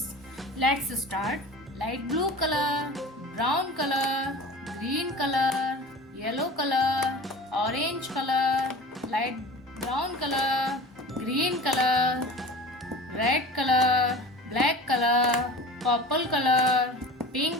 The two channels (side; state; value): both; normal; correlation 0.37